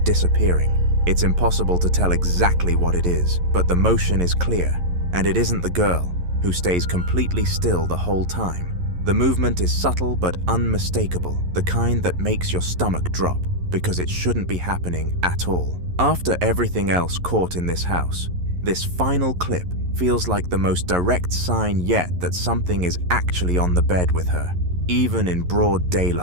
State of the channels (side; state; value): left; late; 11 ms